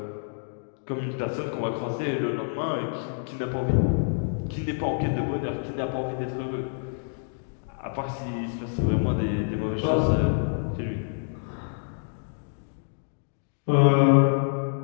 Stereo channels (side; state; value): right; silent; digital silence